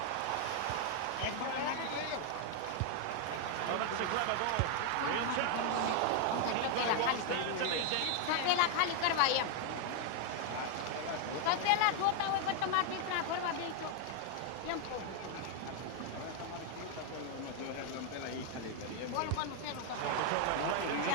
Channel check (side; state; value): both; different; correlation 0.00